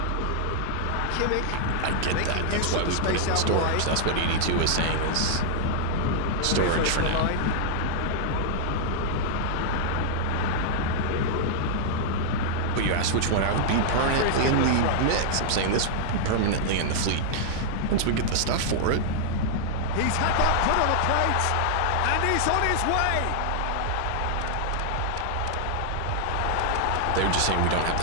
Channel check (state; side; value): different; both; correlation -0.01